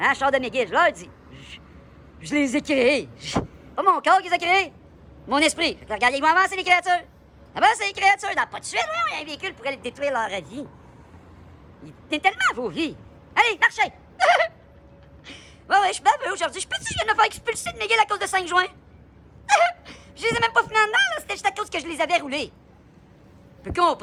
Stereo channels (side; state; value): both; identical; correlation 1.00